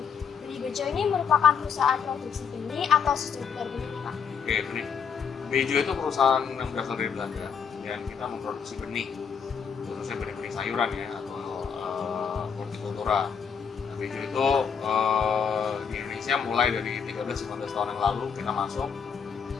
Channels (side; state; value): right; quieter; 6.8 dB